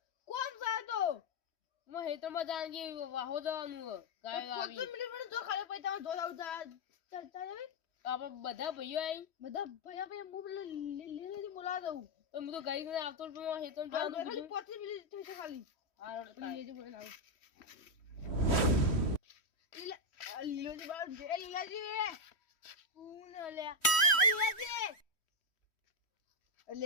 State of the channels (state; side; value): late; right; 3.1 ms